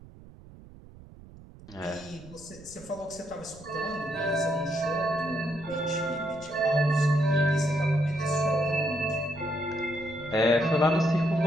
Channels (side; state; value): right; noise; rumble, 20 dB below the sound